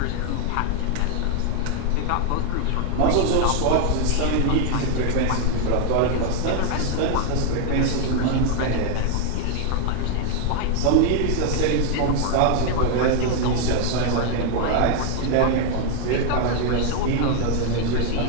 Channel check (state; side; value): different; both; correlation 0.00